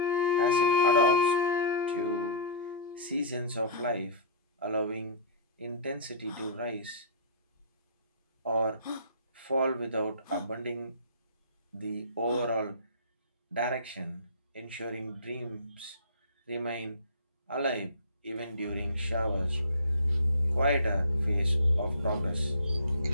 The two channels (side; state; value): both; inverted; correlation -0.36